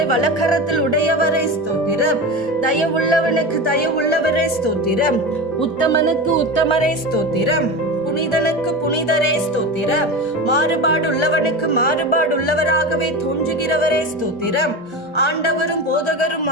வலக்கரத்தில் உடையவரே ஸ்தோத்திரம். தயவுள்ளவனுக்கு தயவுள்ளவரே ஸ்தோத்திரம். உத்தமனுக்கு உத்தமரே ஸ்தோத்திரம். புனிதனுக்கு புனிதரே ஸ்தோத்திரம். மாறுபாடுள்ளவனுக்கு மாறுபாடுள்ளவராகவே தோன்றுகிறவரே ஸ்தோத்திரம். ஆண்டவரும் போதகரும்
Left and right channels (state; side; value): normal; both; correlation 0.25